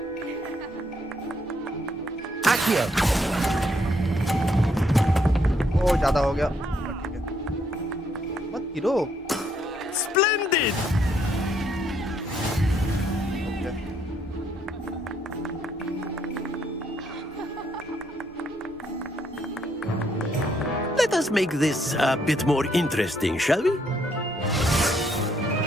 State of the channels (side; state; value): both; normal; correlation 0.72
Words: Accio. ओ ज़्यादा हो गया ठीक है मत गिरो Splendid! Let us make this a bit more interesting, shall we?